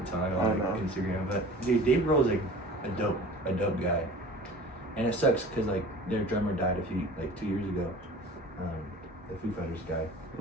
time on like Instagram. But dude, Dave Grohl's like a dope guy, and it sucks because like their drummer died 2 years ago. The Foo Fighters guy.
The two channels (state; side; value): normal; both; correlation 0.42